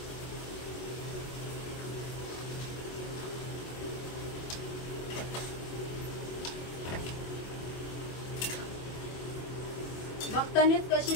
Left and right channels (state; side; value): late; right; 24 ms